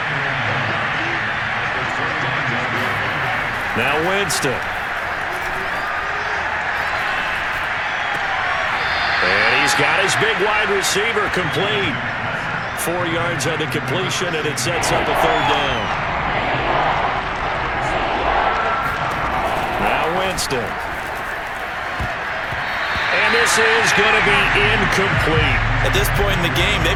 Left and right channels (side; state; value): both; identical; correlation 1.00